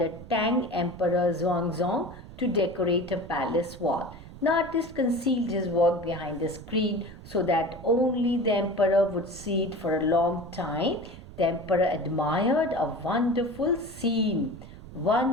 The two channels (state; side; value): noise; right; rumble, 16 dB below the sound